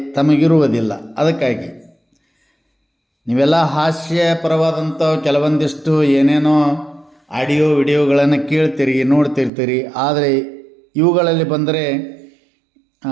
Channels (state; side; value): drops out; left; at 9.5 s